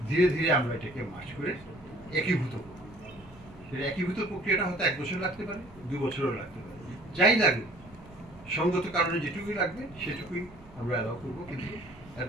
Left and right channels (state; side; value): noise; right; rumble, 22 dB below the sound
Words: ধীরে ধীরে আমরা এটাকে মার্চ করে একীভূত করব। সেটা একীভূত প্রক্রিয়াটা হয়তো 1 বছর লাগতে পারে, 2 বছরও লাগতে পারে, যাই লাগুক সঙ্গত কারণে যেটুকুই লাগবে সেটুকুই আমরা অ্যালাউ করবো, কিন্তু অ্যাট